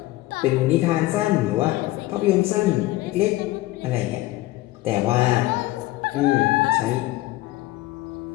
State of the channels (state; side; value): quieter; right; 17.8 dB